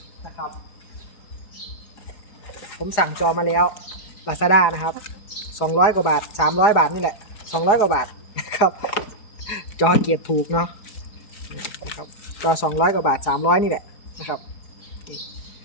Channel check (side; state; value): right; late; 4.8 ms